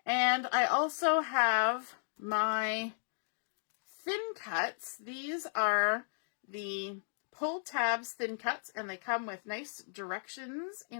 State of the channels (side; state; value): right; silent; digital silence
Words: And I also have my thin cuts. These are the pull tabs thin cuts, and they come with nice directions